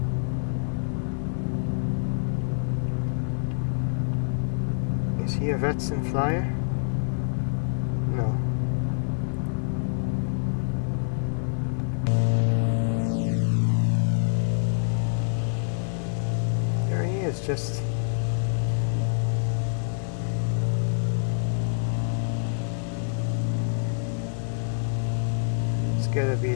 Is he a VATSIM flyer? No. There he is, just... It's gotta be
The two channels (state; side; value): silent; right; digital silence